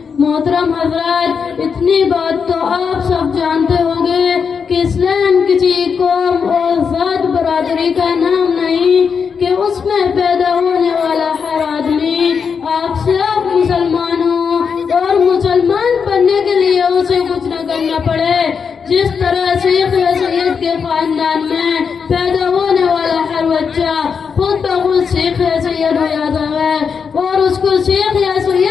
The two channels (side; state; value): right; quieter; 6.1 dB